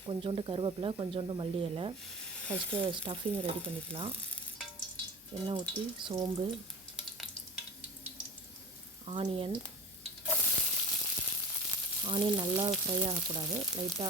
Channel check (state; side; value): normal; both; correlation 0.36